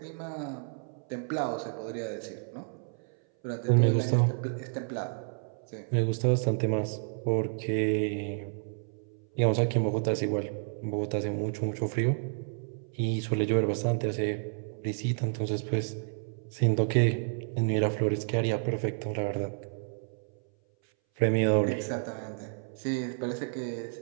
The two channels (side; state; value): left; silent; 58 dB below the other